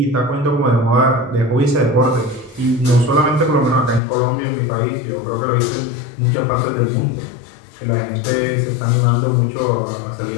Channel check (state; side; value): drops out; right; at 4.0 s